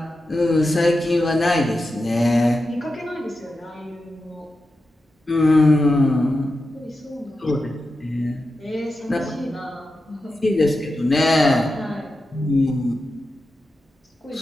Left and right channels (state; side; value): normal; both; correlation 0.90